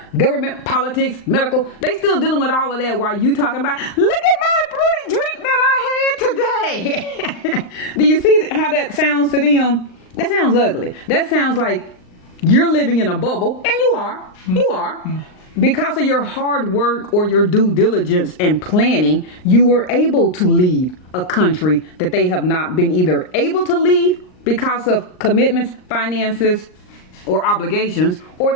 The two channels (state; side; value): late; right; 39 ms